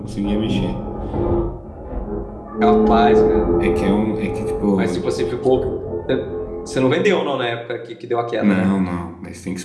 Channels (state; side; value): identical; both; correlation 1.00